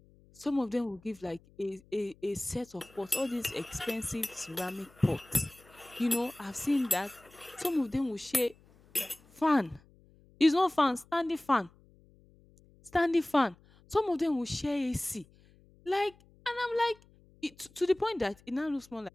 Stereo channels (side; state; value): left; noise; hum, 28 dB below the sound